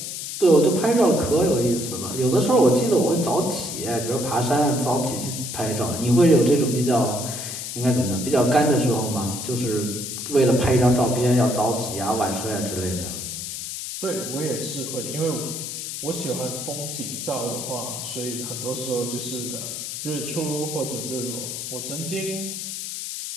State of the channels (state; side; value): noise; left; hiss, 6 dB below the sound